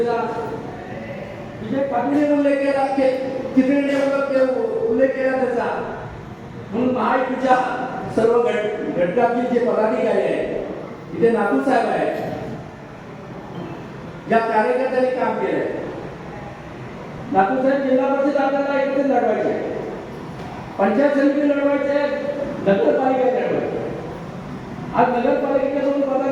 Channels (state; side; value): identical; both; correlation 1.00